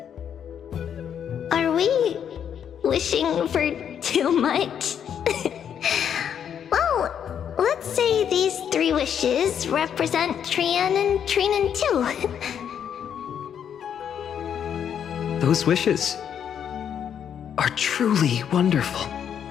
Are we wishing for too much? Well, let's say these 3 wishes represent Trian and Trinan too. Those wishes are truly wonderful.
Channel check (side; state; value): right; quieter; 8.6 dB